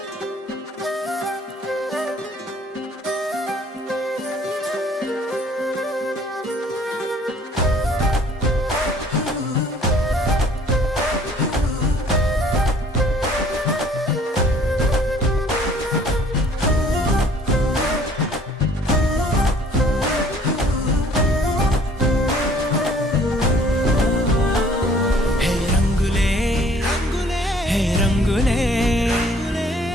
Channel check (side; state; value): both; normal; correlation 0.56